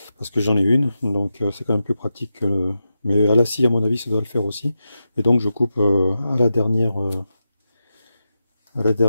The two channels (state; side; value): inverted; both; correlation -0.89